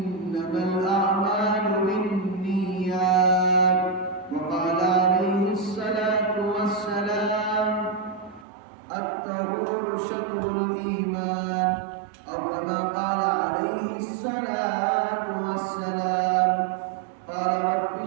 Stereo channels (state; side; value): drops out; left; at 8.5 s